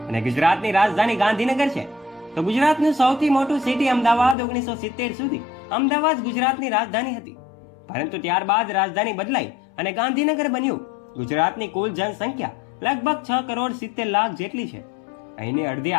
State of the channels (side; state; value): right; drops out; at 4.4 s